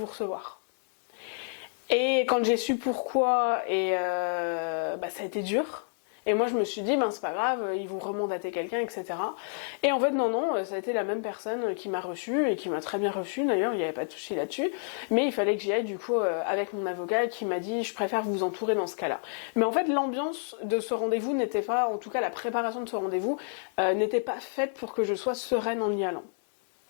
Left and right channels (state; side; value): silent; right; digital silence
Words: recevoir. Et quand j'ai su pourquoi, et ça a été dur. Et moi je me suis dit c'est pas grave, ils vont remandater quelqu'un, etc. Et en fait non, ça a été la même personne qui m'a reçue, et qui m'a très bien reçue d'ailleurs, il n'y avait pas de souci là-dessus, mais il fallait que j'y aille du coup avec mon avocat, qui m'a dit je préfère vous entourer dans ce cas-là. Mais en fait l'ambiance de ce rendez-vous n'était pas, en tout cas la préparation de ce rendez-vous n'était pas faite pour que je sois sereine en y allant.